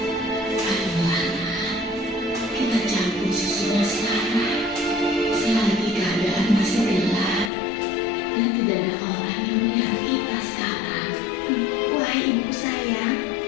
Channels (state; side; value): drops out; right; at 7.5 s